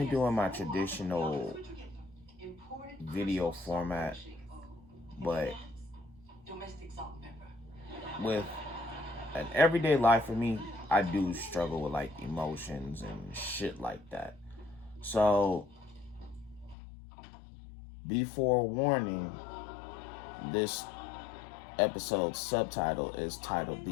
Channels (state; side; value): drops out; right; at 16.8 s